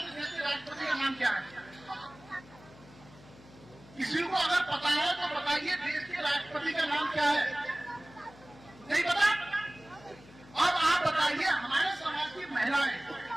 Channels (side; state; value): left; noise; hum, 22 dB below the sound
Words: देश के राष्ट्रपति का नाम क्या है? किसी को अगर पता है तो बताइए, देश के राष्ट्रपति का नाम क्या है? नहीं पता? अब आप बताइए, हमारे समाज की महिलाएं